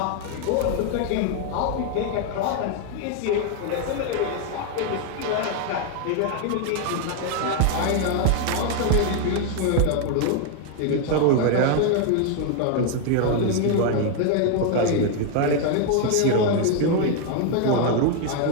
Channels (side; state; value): both; different; correlation 0.00